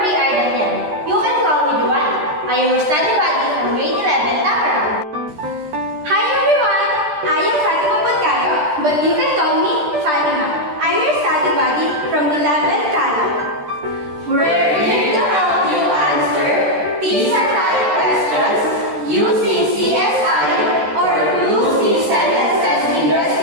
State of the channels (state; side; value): late; left; 13 ms